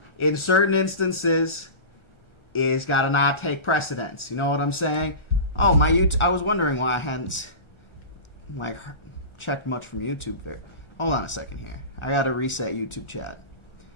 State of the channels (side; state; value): right; late; 1.4 ms